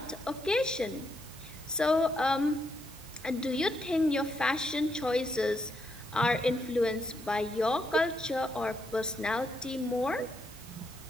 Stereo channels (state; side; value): normal; both; correlation 0.79